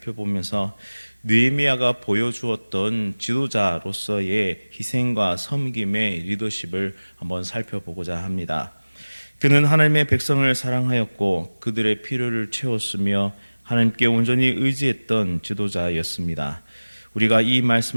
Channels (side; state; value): both; inverted; correlation -1.00